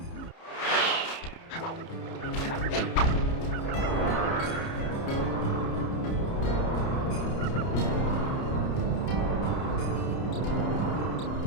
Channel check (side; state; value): right; late; 30 ms